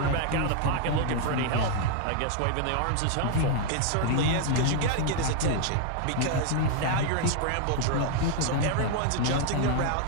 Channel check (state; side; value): different; both; correlation 0.00